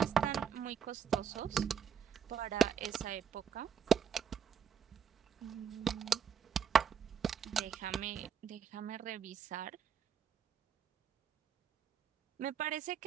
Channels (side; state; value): left; quieter; 7.7 dB